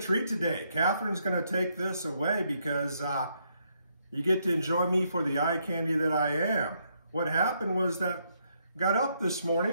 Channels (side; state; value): both; inverted; correlation -0.75